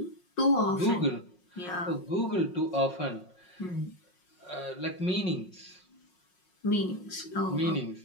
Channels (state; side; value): late; right; 5.5 ms